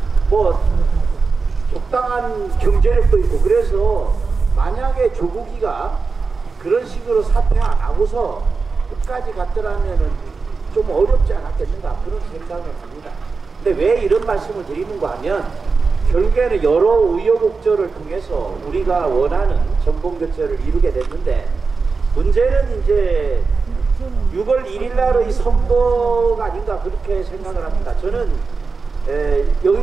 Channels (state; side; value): quieter; left; 4.5 dB